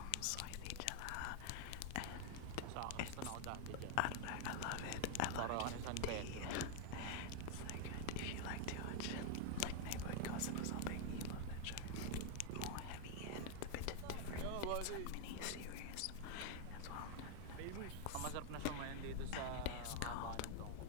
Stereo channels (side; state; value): both; different; correlation 0.00